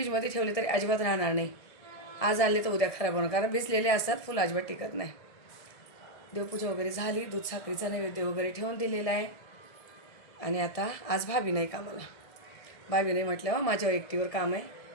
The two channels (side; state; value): right; late; 1.7 ms